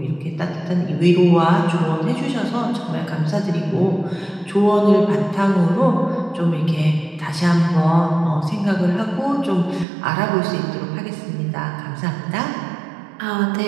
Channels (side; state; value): left; drops out; at 9.9 s